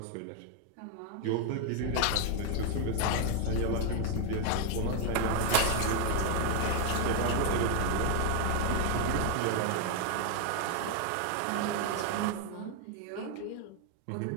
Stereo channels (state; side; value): different; both; correlation 0.00